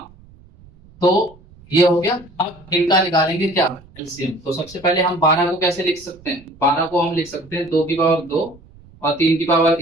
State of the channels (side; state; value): right; noise; rumble, 25 dB below the sound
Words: तो ये हो गया। अब इनका निकालेंगे क्या, एलसीएम। तो सबसे पहले हम 12 को कैसे लिख सकते हैं, 12 को हम लिख सकते हैं 2 की पावर 2 और 3 की पावर